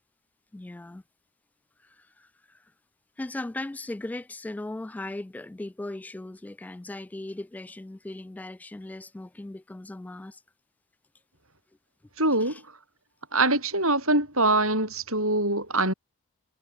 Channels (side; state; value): both; normal; correlation -0.05